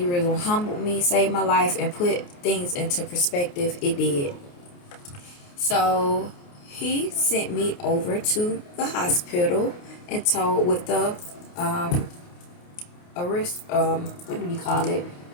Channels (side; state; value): right; late; 28 ms